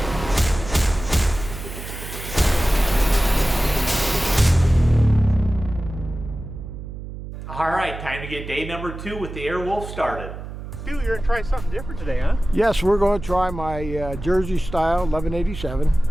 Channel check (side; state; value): right; noise; hum, 10 dB below the sound